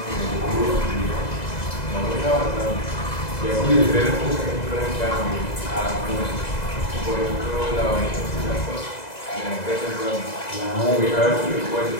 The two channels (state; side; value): late; right; 2.0 ms